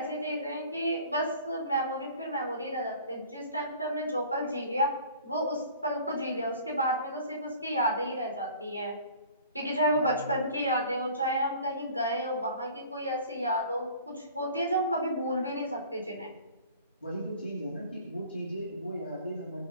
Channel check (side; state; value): both; inverted; correlation -0.48